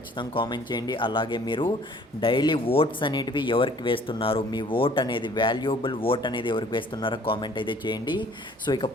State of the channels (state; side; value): normal; both; correlation 0.55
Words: కామెంట్ చేయండి. అలాగే మీరు డైలీ ఓట్స్ అనేటివి ఎవరికి వేస్తున్నారు, మీ ఓట్ అనేది వాల్యుయబుల్ ఓట్ అనేది ఎవరికి వేస్తున్నారో కామెంట్ అయితే చేయండి. సో